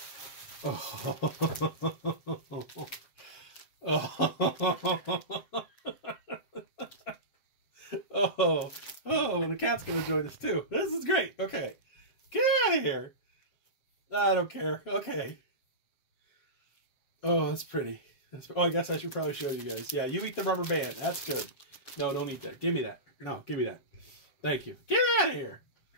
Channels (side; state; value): right; late; 7.7 ms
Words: Oh, the cat's gonna join us too. This is great. Okay, get out of here. I don't care. Okay. Oh, that's pretty. Oh, I guess I should probably show you guys. Yeah, you eat the rubber band. That's good. No, don't eat that. Give me that. No, give me that. Thank you. Get out of here.